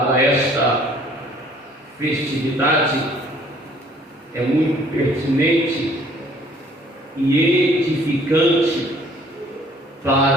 esta festividade, é muito pertinente e edificante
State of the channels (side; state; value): both; normal; correlation 0.58